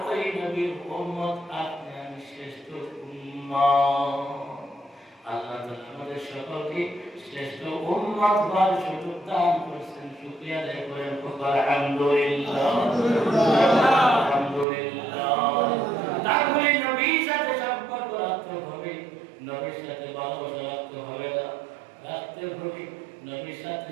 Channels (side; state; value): left; drops out; at 14.7 s